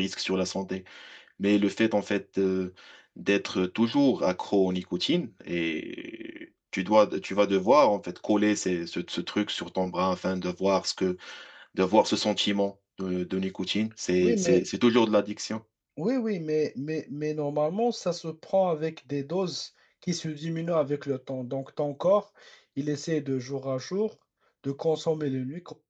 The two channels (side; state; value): both; identical; correlation 1.00